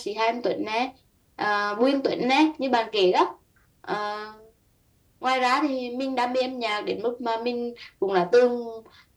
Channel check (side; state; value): both; identical; correlation 1.00